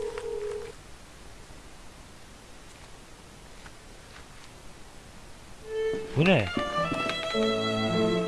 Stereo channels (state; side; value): identical; both; correlation 1.00